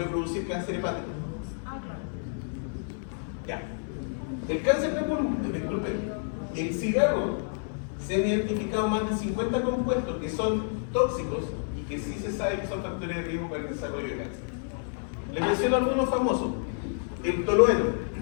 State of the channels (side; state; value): right; silent; 58 dB below the other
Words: producir cáncer hepático. Ah, claro. Ya. El cáncer de pulmón, disculpen, el cigarro se han identificado más de 50 compuestos que son tóxicos y que sí se sabe que son factores de riesgo para el desarrollo de cáncer. Les menciono algunos famosos. El tolueno.